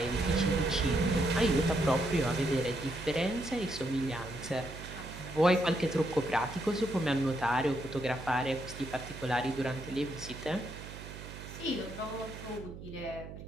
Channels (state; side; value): noise; right; hum, 12 dB below the sound